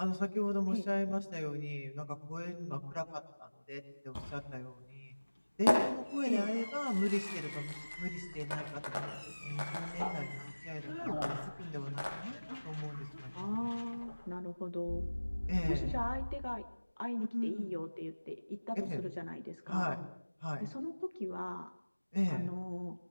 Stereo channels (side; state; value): both; inverted; correlation -1.00